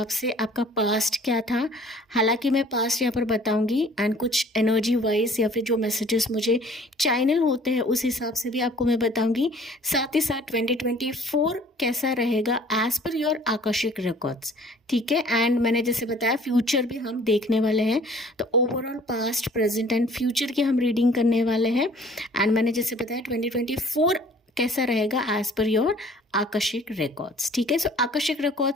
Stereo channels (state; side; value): normal; both; correlation 0.53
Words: से आपका पास्ट क्या था। हालांकि मैं पास्ट यहाँ पर बताऊंगी एंड कुछ एनर्जी वाइज या फिर जो मैसेजेस मुझे चैनल होते हैं उस हिसाब से भी आपको मैं बताऊंगी। साथ ही साथ 2024 कैसा रहेगा as per your Akashic records, ठीक है। एंड मैंने जैसे बताया फ्यूचर भी हम देखने वाले हैं, तो overall past present and future की हम रीडिंग करने वाले हैं। एंड मैंने जैसे बताया 2024 कैसा रहेगा as per your Akashic records, ठीक है। सो आकाशिक